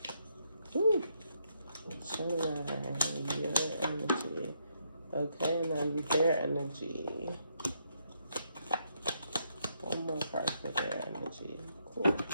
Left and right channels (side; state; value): both; inverted; correlation -0.76